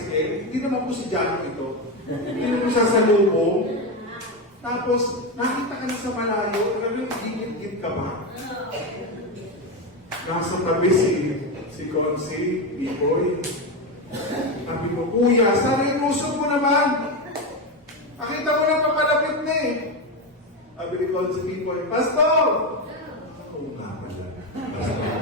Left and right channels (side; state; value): both; normal; correlation 0.13